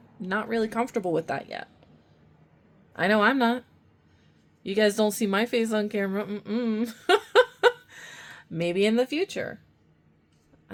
not really comfortable with that yet. I know I'm not. You guys don't see my face on camera. Maybe in the future.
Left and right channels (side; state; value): both; identical; correlation 1.00